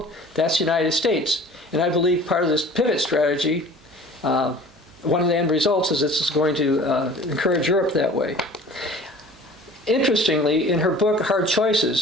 That's the United States. And I believe part of this pivot strategy, one of the end results is this is going to encourage Europe that way. Interestingly, in her book, Hard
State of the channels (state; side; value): normal; both; correlation 0.45